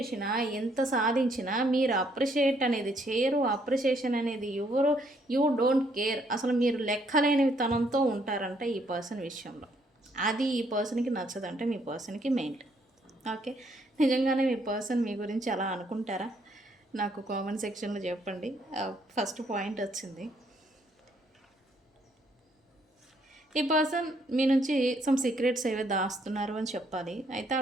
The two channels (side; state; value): both; normal; correlation 0.69